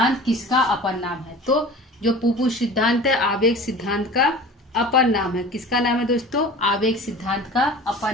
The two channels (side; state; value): both; normal; correlation 0.39